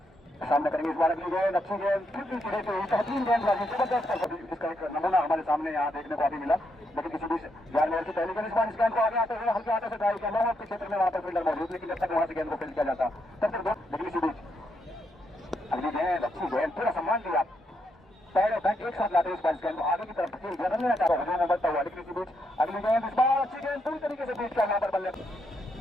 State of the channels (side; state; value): both; normal; correlation 0.79